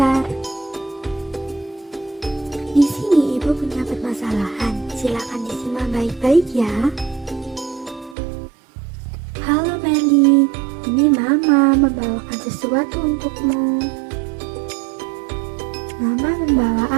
Di sini Ibu punya permasalahan, silakan disimak baik-baik ya. Halo Meli, ini Mama membawakan sesuatu untukmu. Mama membawa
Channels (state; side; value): drops out; left; at 8.2 s